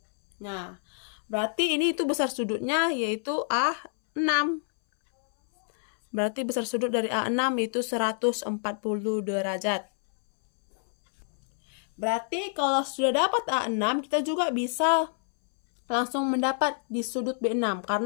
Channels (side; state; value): right; silent; 60 dB below the other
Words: Nah, berarti ini itu besar sudutnya yaitu A6. Berarti besar sudut dari A6 itu 140 derajat. Berarti kalau sudah dapat A6, kita juga bisa langsung mendapat di sudut B6